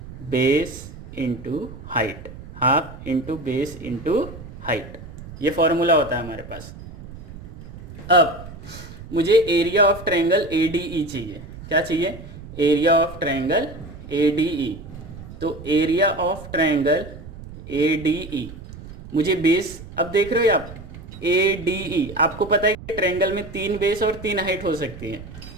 base into height, half into base into height, ये फॉर्मूला होता है हमारे पास। अब मुझे area of triangle A D E चाहिए, क्या चाहिए, area of triangle A D E, तो area of triangle A D E, मुझे बेस, अब देख रहे हो आप ए डी ई, आपको पता है कि ट्रायंगल में 3 बेस और 3 हाइट हो सकती है,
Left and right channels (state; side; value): noise; right; rumble, 14 dB below the sound